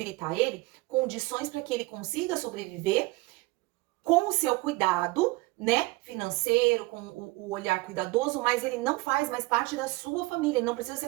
ele condições para que ele consiga sobreviver com o seu cuidado, né, financeiro, com o olhar cuidadoso, mas ele não faz mais parte da sua família, ele não precisa ser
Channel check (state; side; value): quieter; left; 22.3 dB